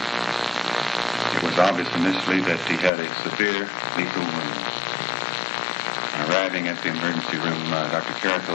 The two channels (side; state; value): right; drops out; at 2.9 s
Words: was obvious initially that he had a severe lethal wound. On arriving at the emergency room, Dr. Carrico